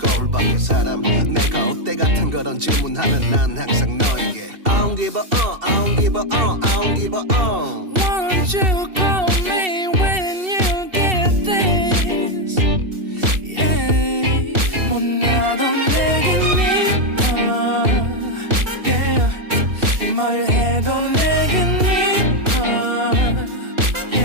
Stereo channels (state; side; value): late; left; 2.7 ms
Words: 밖의 사람 내가 어때 같은 그런 질문하면 난 항상 너에게 I don't give a I don't give a I don't give a Won't you call me when you get this Yeah 못나도 내겐 이뻐 Yeah 뭘 해도 내겐 이뻐